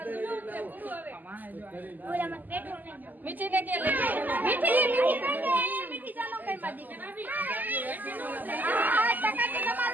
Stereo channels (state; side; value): late; left; 0.084 ms